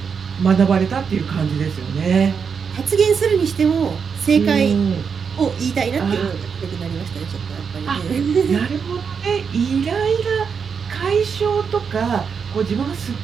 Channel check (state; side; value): quieter; left; 6.2 dB